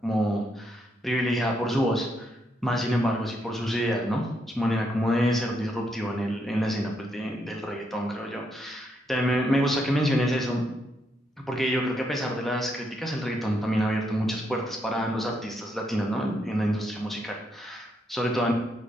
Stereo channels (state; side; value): normal; both; correlation 0.77